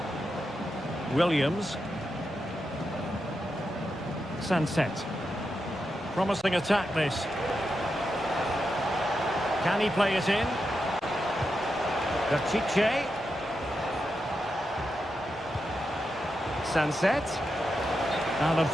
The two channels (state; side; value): normal; both; correlation 0.87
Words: Williams. Sunset. Promising attack this. Can he play it in? Pishit. Sunset. And